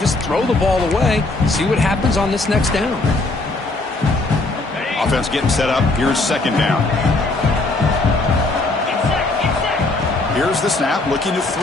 throw the ball away. See what happens on this next down. Offense getting set up. Here's second down. Here's the snap, looking to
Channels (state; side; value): quieter; right; 3.1 dB